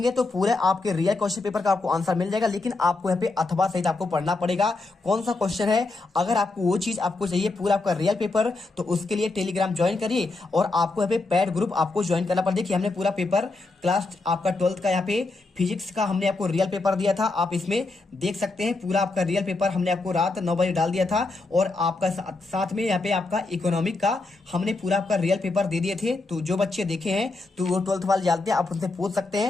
तो पूरे आपके रियल क्वेश्चन पेपर का आपको आंसर मिल जाएगा। लेकिन आपको यहाँ पे अथवा सहित आपको पढ़ना पड़ेगा कौन सा क्वेश्चन है। अगर आपको वो चीज आपको चाहिए पूरा आपका रियल पेपर, तो उसके लिए टेलीग्राम ज्वाइन करिए और आपको यहाँ पे पैड ग्रुप आपको ज्वाइन करना पड़ेगा। देखिए हमने पूरा पेपर क्लास आपका 12th का यहाँ पे फिजिक्स का हमने आपको रियल पेपर दिया था। आप इसमें देख सकते हैं पूरा आपका रियल पेपर हमने आपको रात 9 बजे डाल दिया था। और आपका साथ में यहाँ पे आपका इकोनॉमिक का हमने पूरा आपका रियल पेपर दे दिए थे। तो जो बच्चे देखे हैं तो वो 12th वाले जानते हैं, आप उनसे पूछ सकते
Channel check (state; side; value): quieter; right; 3.4 dB